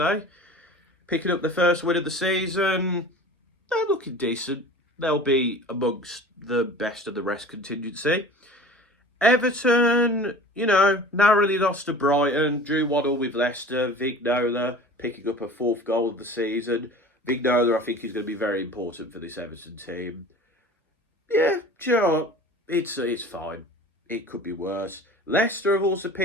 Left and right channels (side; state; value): both; normal; correlation 0.40